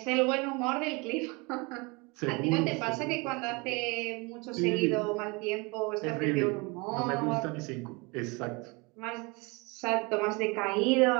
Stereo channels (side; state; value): left; quieter; 27.9 dB